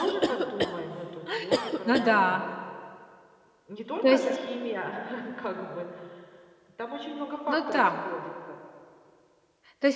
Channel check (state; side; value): identical; both; correlation 1.00